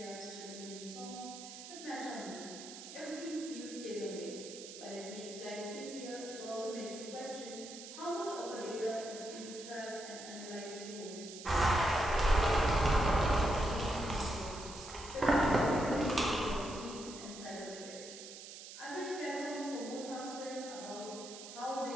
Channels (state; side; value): noise; right; hiss, 12 dB below the sound